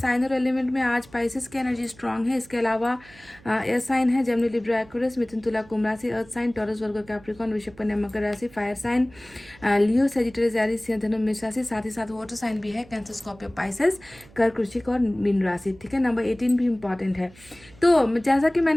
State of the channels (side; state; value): right; noise; hum, 24 dB below the sound